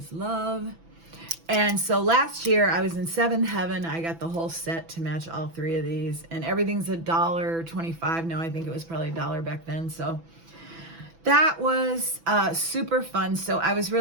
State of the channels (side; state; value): left; late; 6.0 ms